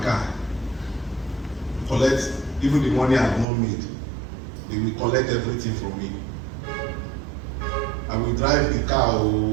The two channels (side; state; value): left; drops out; at 3.5 s